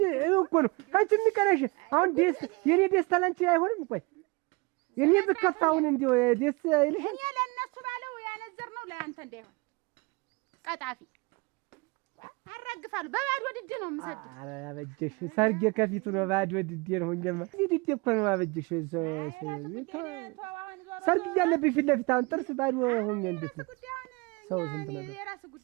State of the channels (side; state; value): left; quieter; 26.8 dB